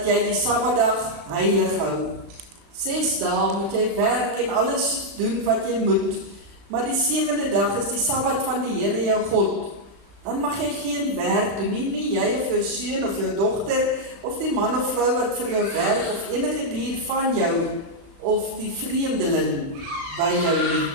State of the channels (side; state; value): left; late; 35 ms